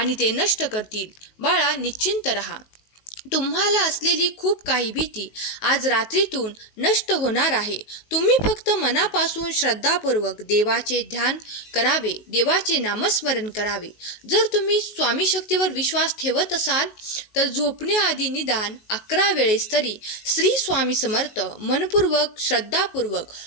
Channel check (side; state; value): right; late; 19 ms